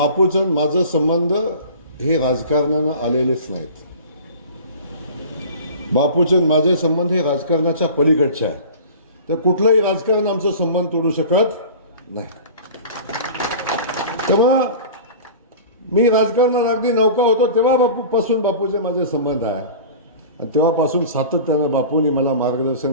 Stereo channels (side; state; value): both; inverted; correlation -0.39